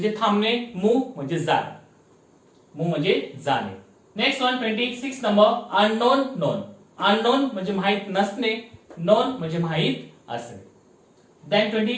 थांबणे, मूव म्हणजे जाणे. मूव म्हणजे जाणे. Next one 26 number unknown, known. Unknown म्हणजे माहित नसणे, नोन म्हणजे माहित असणे. Then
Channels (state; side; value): identical; both; correlation 1.00